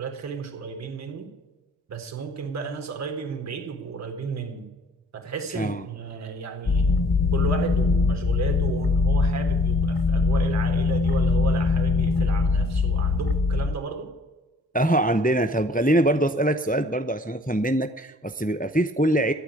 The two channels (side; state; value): both; normal; correlation 0.57